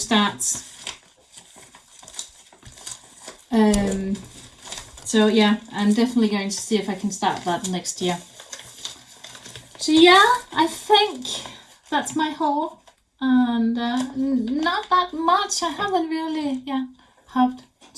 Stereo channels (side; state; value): both; identical; correlation 1.00